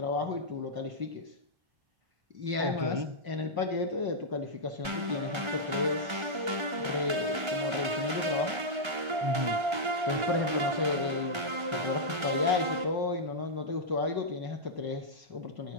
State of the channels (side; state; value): left; late; 1.3 ms